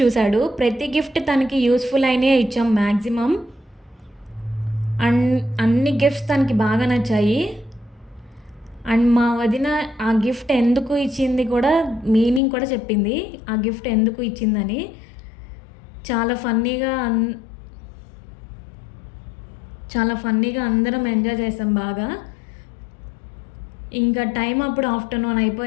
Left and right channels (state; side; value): drops out; right; at 12.4 s